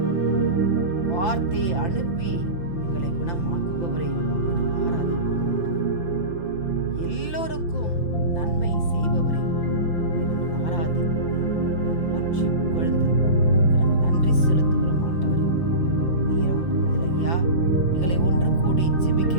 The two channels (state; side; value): late; right; 5.9 ms